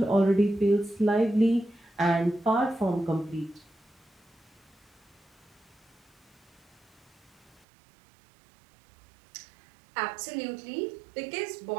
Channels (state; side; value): drops out; left; at 7.6 s